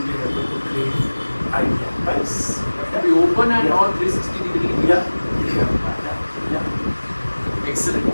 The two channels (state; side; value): inverted; both; correlation -1.00